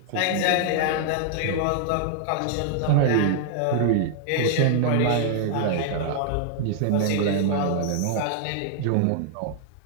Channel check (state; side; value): different; both; correlation 0.00